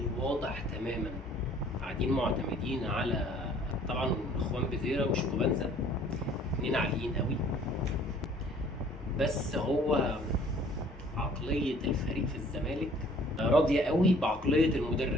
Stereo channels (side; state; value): both; normal; correlation 0.55